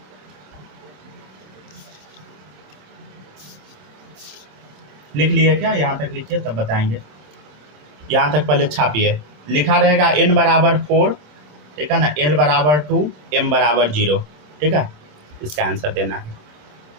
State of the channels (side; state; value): left; late; 27 ms